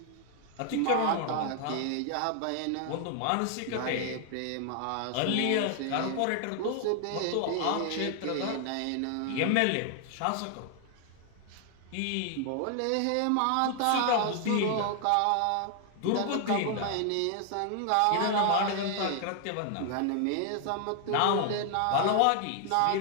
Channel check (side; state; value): both; different; correlation 0.00